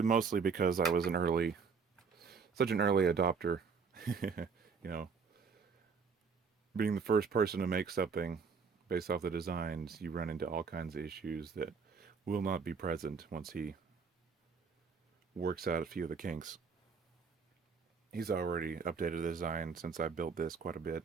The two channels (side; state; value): left; quieter; 5.6 dB